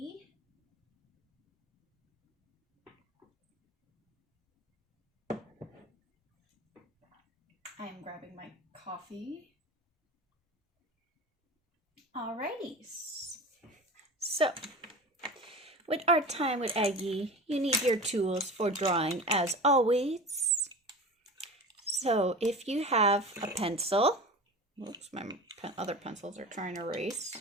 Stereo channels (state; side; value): normal; both; correlation 0.33